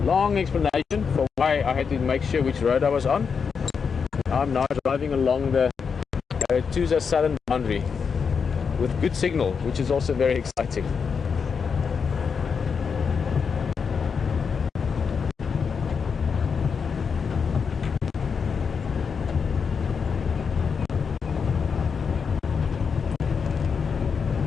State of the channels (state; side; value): quieter; right; 6.0 dB